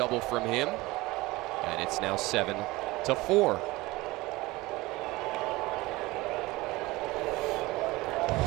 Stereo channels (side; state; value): left; quieter; 20.7 dB